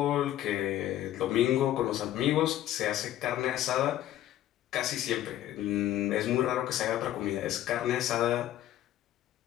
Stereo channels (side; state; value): right; quieter; 13.1 dB